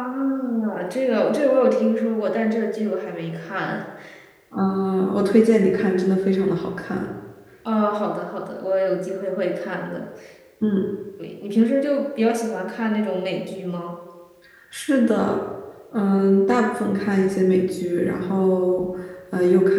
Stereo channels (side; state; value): both; identical; correlation 1.00